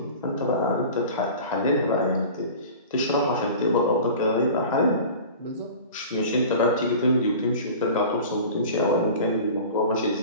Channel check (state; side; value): inverted; both; correlation -0.38